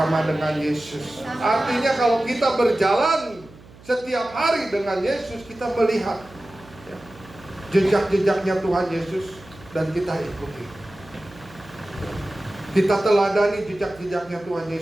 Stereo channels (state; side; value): noise; right; hum, 22 dB below the sound